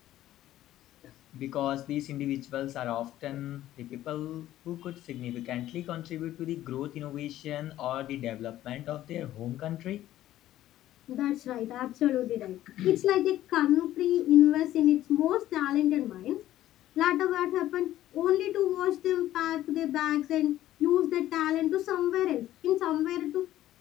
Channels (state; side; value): quieter; right; 13.7 dB